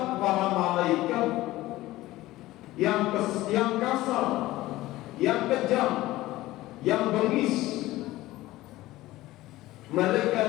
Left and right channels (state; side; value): quieter; right; 17.1 dB